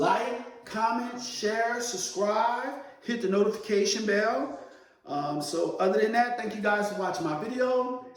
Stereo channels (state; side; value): identical; both; correlation 1.00